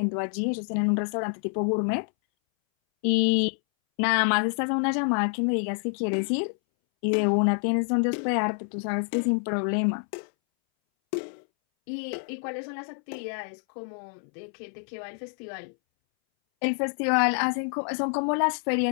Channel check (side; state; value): right; silent; 60 dB below the other